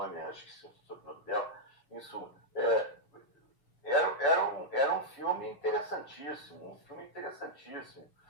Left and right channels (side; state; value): right; late; 6.9 ms